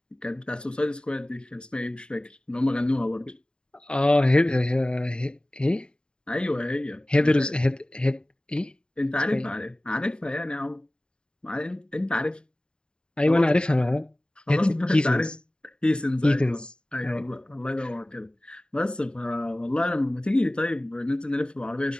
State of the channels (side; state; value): right; late; 0.051 ms